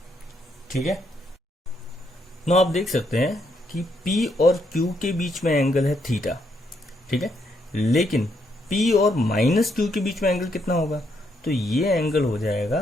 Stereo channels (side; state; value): both; normal; correlation 0.76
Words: ठीक है, नो आप देख सकते हैं कि P और Q के बीच में एंगल है थीटा। ठीक है, लेकिन P और माइनस Q के बीच में एंगल कितना होगा, तो ये एंगल हो जाएगा